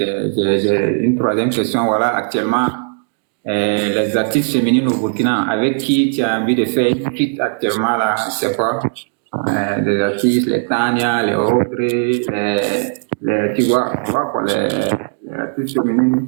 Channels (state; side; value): silent; left; digital silence